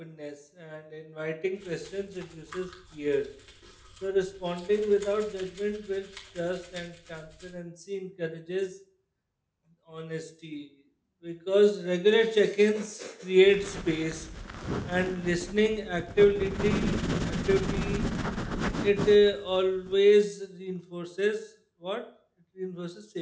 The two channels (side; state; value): both; identical; correlation 1.00